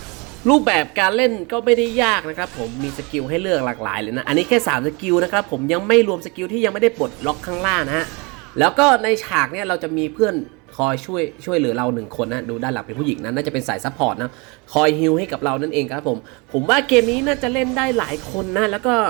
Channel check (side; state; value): left; quieter; 28.9 dB